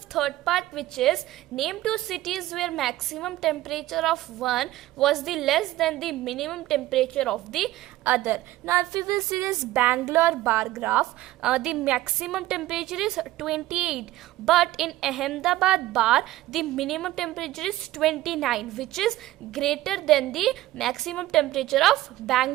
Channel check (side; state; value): left; quieter; 15.9 dB